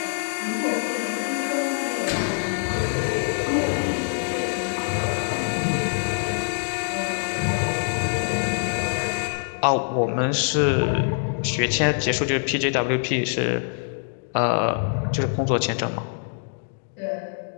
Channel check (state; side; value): silent; right; digital silence